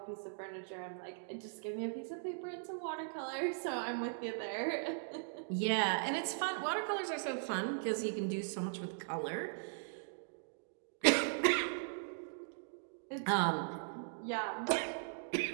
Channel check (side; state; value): left; silent; digital silence